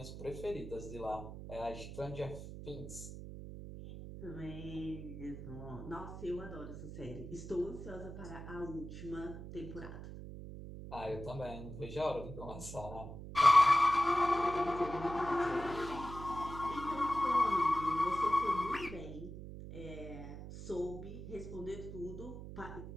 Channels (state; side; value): noise; right; hum, 10 dB below the sound